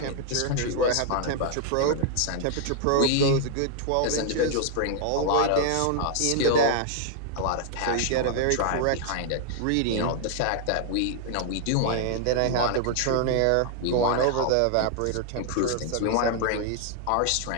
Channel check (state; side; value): different; both; correlation 0.00